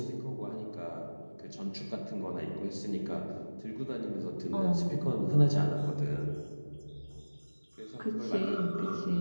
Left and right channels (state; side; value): inverted; both; correlation -1.00